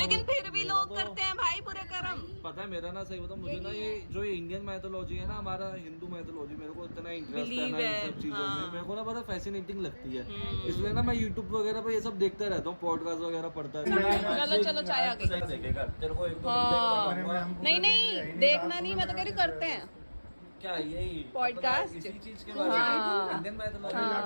फिर भी लोग करते हैं भाई बुरे कर्म। पता है मेरा ना सही बताऊं, मुझे ना ये जो ये इंडियन मैथोलॉजी है ना, हमारा हिंदू मैथोलॉजी, मेरे को इतना इंटरेस्ट है ना इन सब चीजों में, मेरे को ना बड़ा फैसिनेटिंग लगती है। इसलिए ना मैं यूट्यूब वगैरह पे ये सब देखता रहता हूँ, पॉडकास्ट वगैरह पढ़ता रहता हूँ। चलो चाय आ गई। देखेगा तेरे को एक दो नहीं देखना नहीं, मैं तो कह रही करते हैं क्या यही पॉडकास्ट इसी चीज के बारे में इंडियन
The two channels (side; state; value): both; inverted; correlation -1.00